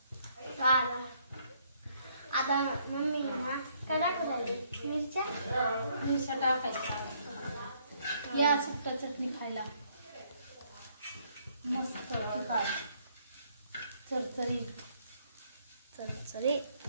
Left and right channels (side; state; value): both; inverted; correlation -0.68